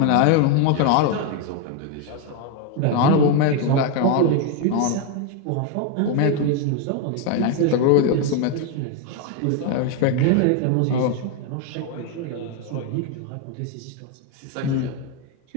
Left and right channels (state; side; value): different; both; correlation 0.01